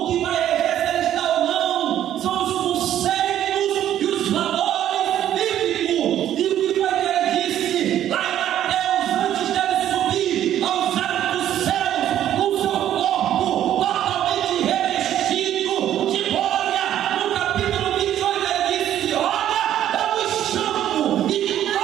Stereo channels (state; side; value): quieter; left; 11.4 dB